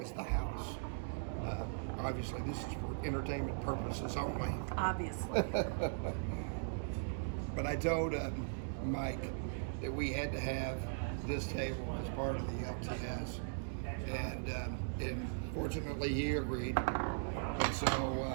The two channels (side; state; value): left; silent; digital silence